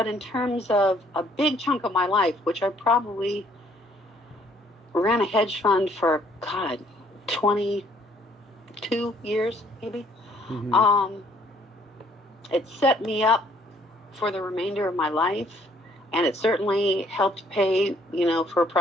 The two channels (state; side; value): normal; both; correlation 0.63